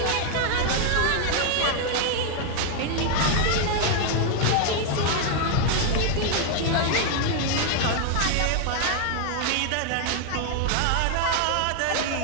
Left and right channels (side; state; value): both; different; correlation 0.00